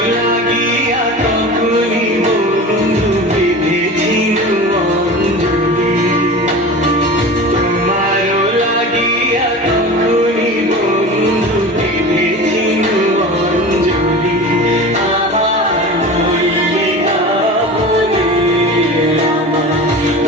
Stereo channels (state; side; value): normal; both; correlation 0.33